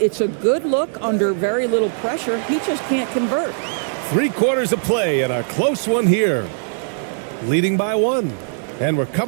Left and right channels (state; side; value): silent; left; 66 dB below the other